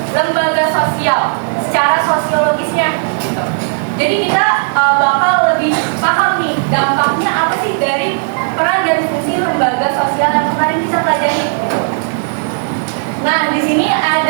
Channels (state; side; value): silent; left; digital silence